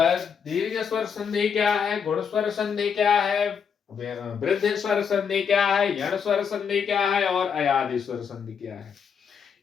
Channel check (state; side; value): quieter; right; 6.8 dB